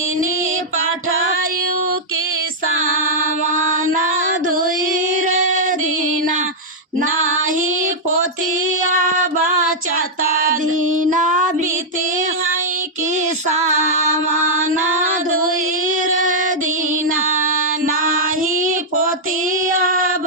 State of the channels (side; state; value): both; normal; correlation -0.06